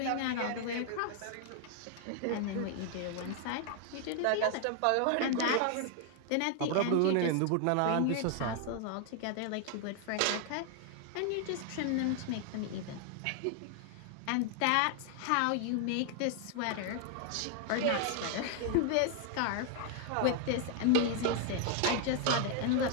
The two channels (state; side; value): different; both; correlation 0.00